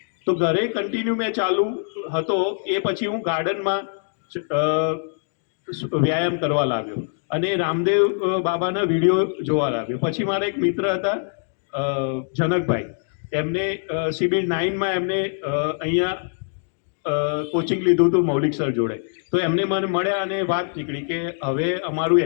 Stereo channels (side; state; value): right; silent; digital silence